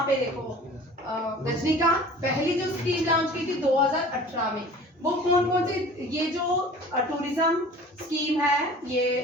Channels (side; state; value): both; normal; correlation 0.44